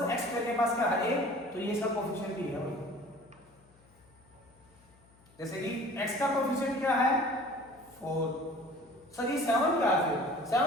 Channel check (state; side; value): noise; left; hum, 29 dB below the sound